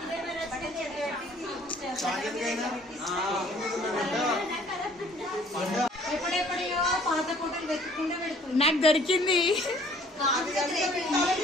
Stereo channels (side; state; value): both; normal; correlation 0.57